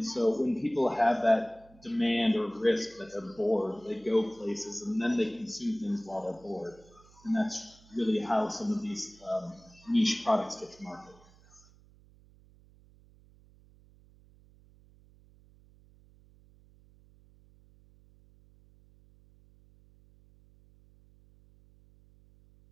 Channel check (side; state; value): right; noise; hum, 27 dB below the sound